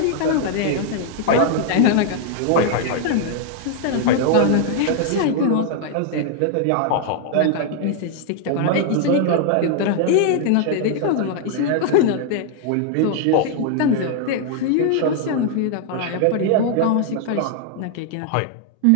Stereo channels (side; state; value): both; different; correlation 0.00